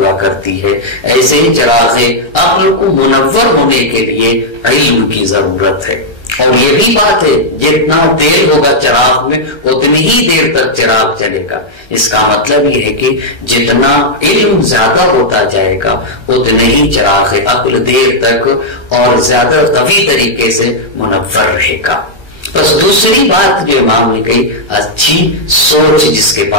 کرتی ہے، ایسے ہی چراغ عقل کو منور ہونے کے لیے علم کی ضرورت ہے۔ اور یہ بھی بات ہے جتنا تیل ہوگا چراغ میں اتنی ہی دیر تک چراغ چلے گا، اس کا مطلب یہ ہے کہ جتنا علم زیادہ ہوتا جائے گا اتنے ہی چراغ عقل دیر تک اور زیادہ قوی طریقے سے منور رہے گا۔ بس دوسری بات جو امام نے کہی، اچھی سوچ جس کے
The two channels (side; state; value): right; late; 1.3 ms